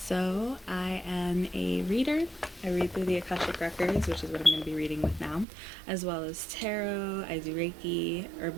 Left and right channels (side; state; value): left; drops out; at 5.5 s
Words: So, I am a reader. I read through the Akashic Records, which is what I'm going to be reading with now, as well as tarot. I do Reiki,